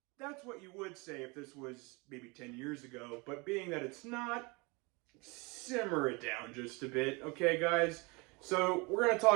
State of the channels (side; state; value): left; quieter; 27.7 dB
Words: That's what you would say if this was maybe 10 years ago, but being that it's not, simmer it down just a bit, okay, guys? So we're going to